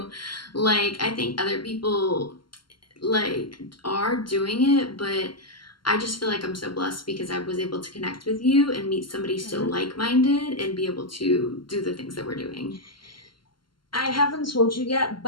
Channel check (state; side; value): late; right; 0.72 ms